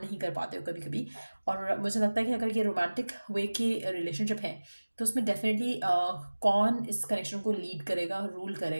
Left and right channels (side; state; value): both; inverted; correlation -1.00